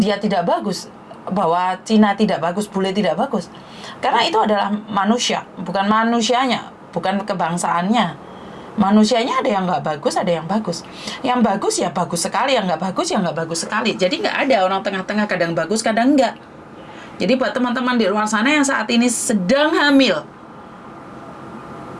tidak bagus, bahwa Cina tidak bagus, bule tidak bagus. Karena itu adalah manusia, bukan manusianya, bukan kebangsaannya. Manusianya ada yang nggak bagus, ada yang bagus. Yang bagus ya bagus sekali, yang nggak bagus ya nggak bagus sekali. Jadi nggak ada orang tengah-tengah, kadang bagus, kadang enggak. Jadi buat teman-teman di luar sana yang saat ini sedang hamil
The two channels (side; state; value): both; identical; correlation 1.00